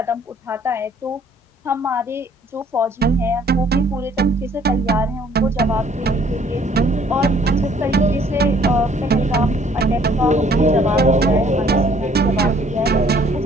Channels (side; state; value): both; normal; correlation 0.60